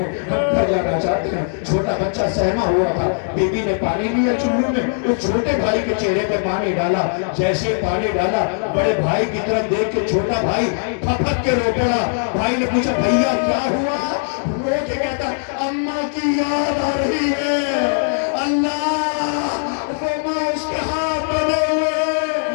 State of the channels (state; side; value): silent; right; digital silence